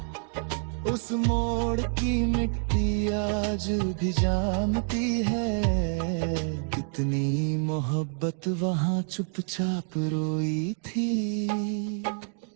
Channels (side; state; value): left; silent; 57 dB below the other